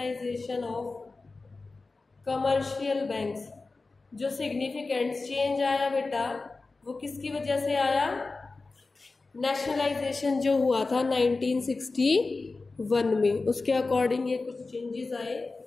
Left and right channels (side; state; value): right; quieter; 3.7 dB